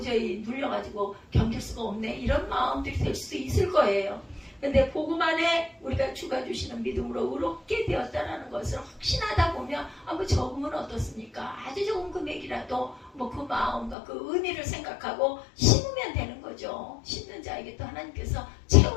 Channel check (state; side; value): drops out; right; at 14.0 s